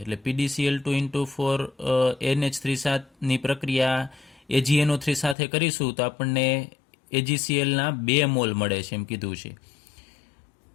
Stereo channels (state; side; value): drops out; right; at 5.4 s